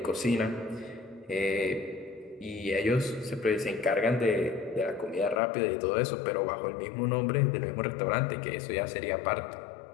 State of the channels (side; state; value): right; drops out; at 5.4 s